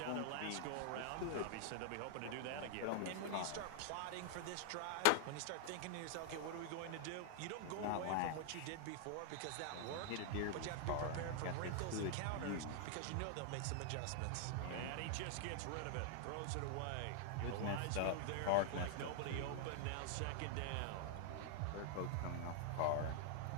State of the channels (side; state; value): both; different; correlation 0.00